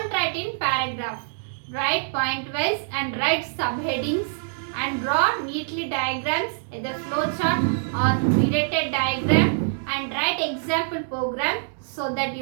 write in paragraph. Write point wise and write subheadings and draw neatly diagrams, either flowchart or related diagram, and write example program so that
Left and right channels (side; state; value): left; silent; digital silence